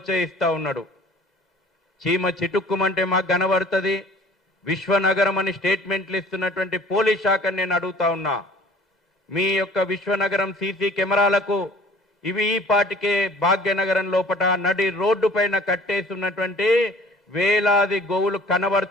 ఉన్నాడు. చీమ చిటుక్కుమంటే మాకు కనబడుతుంది. విశ్వనగరం అని స్టేట్మెంట్లు ఇస్తున్నటువంటి పోలీస్ శాఖను నేను అడుగుతా ఉన్నా, మీ యొక్క విశ్వనగరం సీసీ కెమెరాలకు ఇవి ఈ పాటికే భాగ్యనగరం లోపట నడి రోడ్డు పైన కట్టేస్తున్నటువంటి వేలాది గోవులు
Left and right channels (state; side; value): normal; both; correlation 0.50